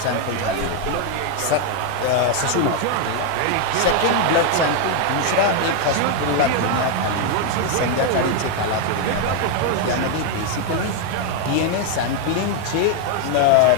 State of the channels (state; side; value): different; both; correlation 0.01